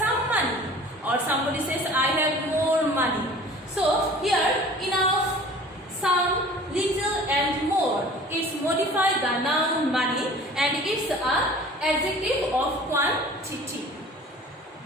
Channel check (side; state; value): both; normal; correlation 0.45